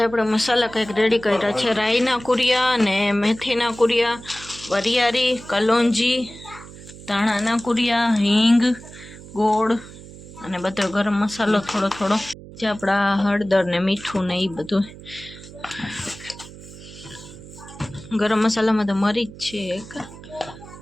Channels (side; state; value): right; noise; hum, 17 dB below the sound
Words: આપણે મસાલા કંઈક રેડી કર્યા છે, રાઈના કુરિયા અને મેથીના કુરિયા, વરિયાળી, કલોંજી, ધાણાના કુરિયા, હિંગ, ગોળ અને બધો ગરમ મસાલો થોડો થોડો, જે આપણા હળદર ને મીઠું ને એ બધું. ગરમ મસાલામાં તો મરી જ છે એક.